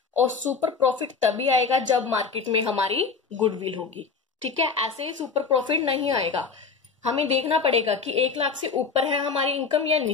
और सुपर प्रॉफिट तभी आएगा जब मार्केट में हमारी गुडविल होगी। ठीक है, ऐसे ही सुपर प्रॉफिट नहीं आएगा। हमें देखना पड़ेगा कि 1 लाख से ऊपर है हमारी इनकम या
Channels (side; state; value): right; quieter; 5.1 dB